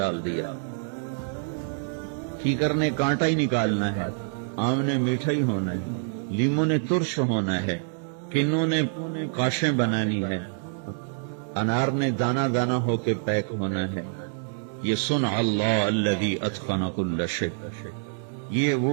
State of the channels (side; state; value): left; silent; digital silence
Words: دیا۔ کیکر نے کانٹا ہی نکالنا ہے، آم نے میٹھا ہی ہونا ہے، لیموں نے ترش ہونا ہے، کنوں نے کاشیں بنانی ہے، انار نے دانا دانا ہو کے پیک ہونا ہے۔ یہ صنع اللہ الذی اتقن کل شیء، یہ